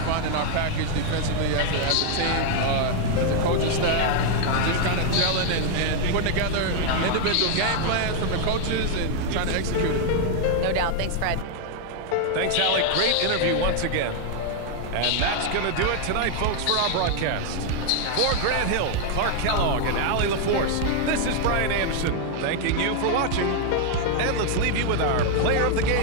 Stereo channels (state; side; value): different; both; correlation 0.00